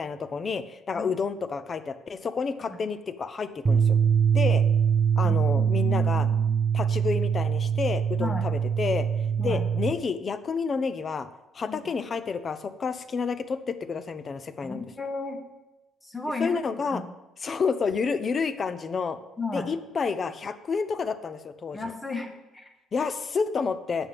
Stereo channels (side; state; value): both; normal; correlation 0.74